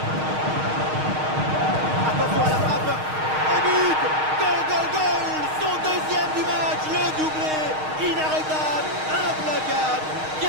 Attention à la frappe. Un but. Goal. Son deuxième du match. Le doublé. Inarrêtable. Implacable.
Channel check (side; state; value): left; late; 6.4 ms